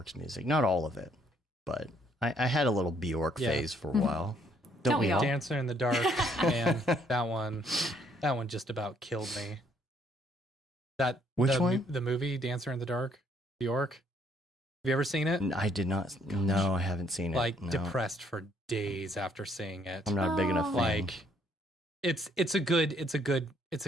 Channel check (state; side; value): normal; both; correlation 0.67